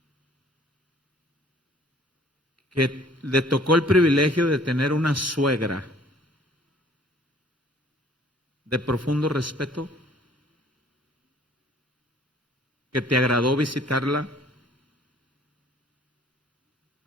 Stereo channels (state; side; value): normal; both; correlation 0.56